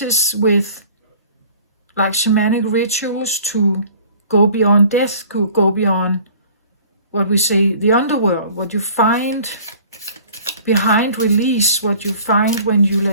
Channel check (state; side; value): inverted; both; correlation -0.50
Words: with like shamanic rituals to go beyond death, go beyond what we say, the underworld, what you find behind release, what you find when you